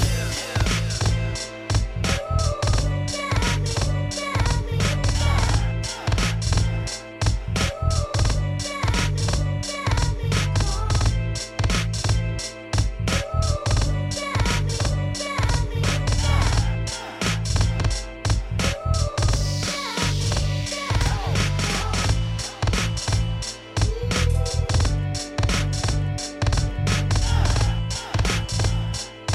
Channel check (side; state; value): both; identical; correlation 1.00